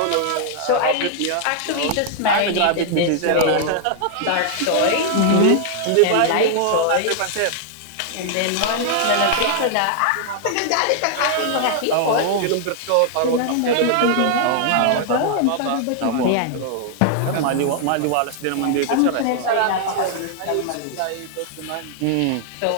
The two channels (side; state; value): both; different; correlation -0.01